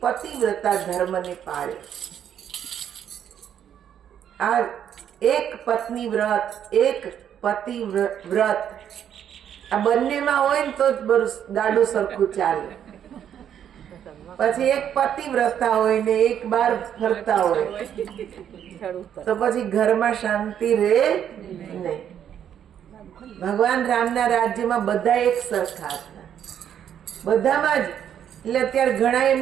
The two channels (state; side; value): quieter; left; 9.4 dB